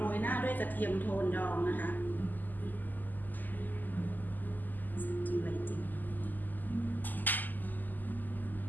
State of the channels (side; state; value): right; late; 0.085 ms